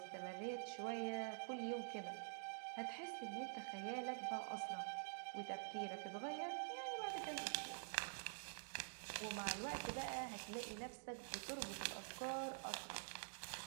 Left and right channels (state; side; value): silent; left; digital silence